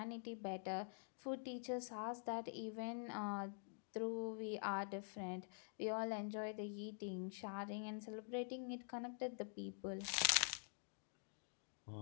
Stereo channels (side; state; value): right; silent; digital silence